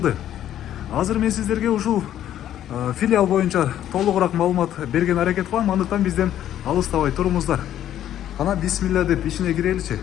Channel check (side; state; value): right; quieter; 11.4 dB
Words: Азыр мен сиздерге ушул филиал боюнча толугураак маалымат берген аракет кылам, андыктан бизден алыстабай туруңуздар. Кана бисмилля деп ичине киреличи.